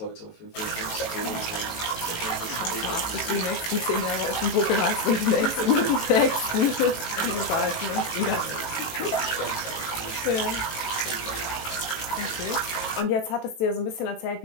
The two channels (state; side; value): late; right; 18 ms